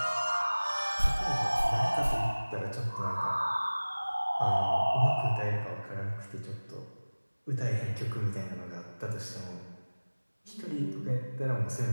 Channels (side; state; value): both; inverted; correlation -1.00